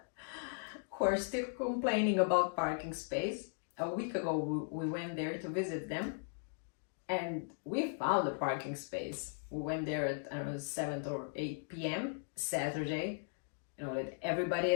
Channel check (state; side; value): silent; right; digital silence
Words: who are still complaining about parking space. A week ago, we went there to visit them, and we found a parking space. We went there at, I don't know, 7 or 8 p.m. Saturday. You know, that